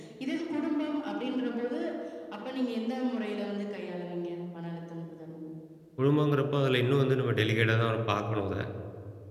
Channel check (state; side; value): identical; both; correlation 1.00